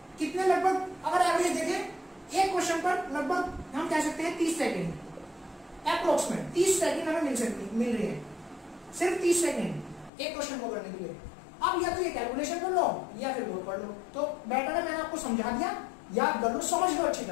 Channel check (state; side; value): drops out; right; at 10.1 s